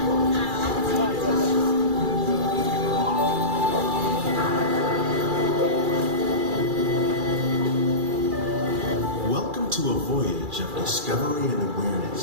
Welcome to a voyage of discovery and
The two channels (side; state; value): left; late; 2.4 ms